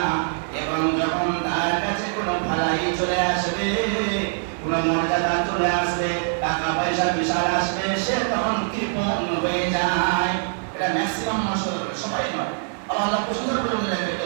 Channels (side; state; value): left; silent; 61 dB below the other